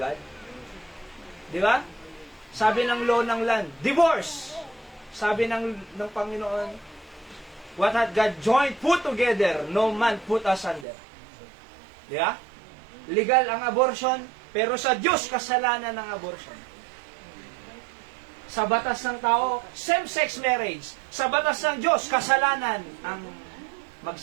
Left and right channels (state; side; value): drops out; left; at 10.9 s